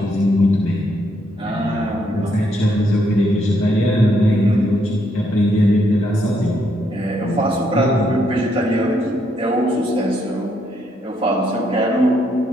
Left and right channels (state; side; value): normal; both; correlation 0.74